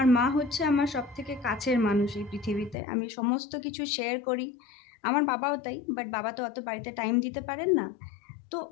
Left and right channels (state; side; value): drops out; right; at 2.8 s